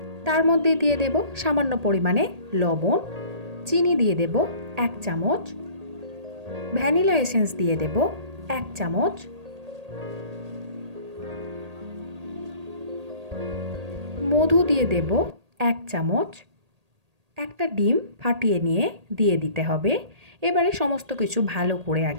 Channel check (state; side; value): late; left; 1.8 ms